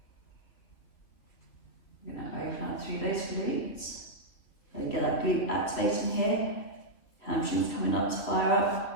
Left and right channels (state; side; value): late; right; 3.2 ms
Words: We're going to open up through those glutes. So get that glute activating here. Hamstrings coming up to fire